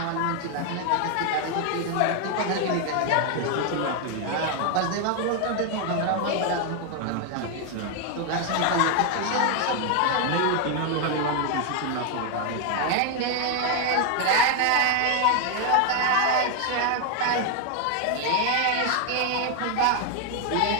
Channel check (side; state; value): both; different; correlation 0.01